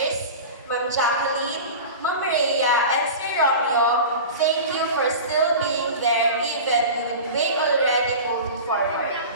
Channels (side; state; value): both; inverted; correlation -0.32